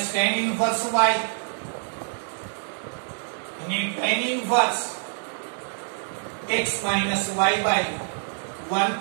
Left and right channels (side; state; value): left; silent; 61 dB below the other